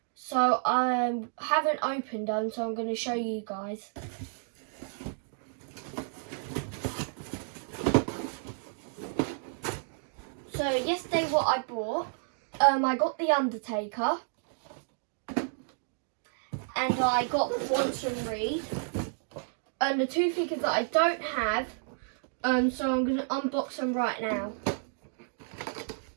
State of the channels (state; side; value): silent; left; digital silence